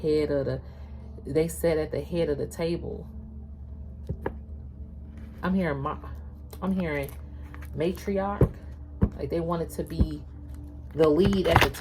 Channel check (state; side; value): identical; both; correlation 1.00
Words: they sat at the head of the table. I'm hearing matriarch, like they wanted to be the lead at the